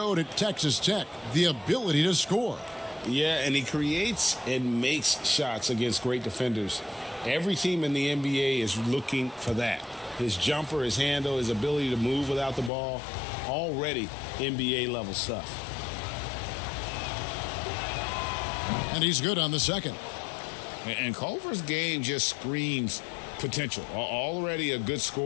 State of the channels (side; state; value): right; drops out; at 12.7 s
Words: at Texas Tech, the ability to score. Yeah, and he creates and makes shots against great defenders. Every team in the NBA is looking for that. His jumper, his handle, his ability to move without the ball, already NBA level stuff. And he's good on the second. And Culver's game just screams potential. Already a good